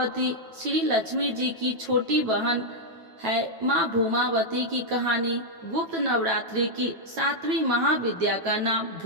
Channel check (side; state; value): left; late; 9.1 ms